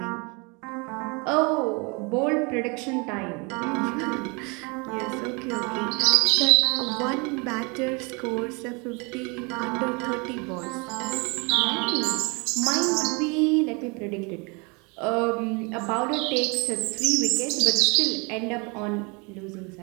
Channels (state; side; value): quieter; left; 30.3 dB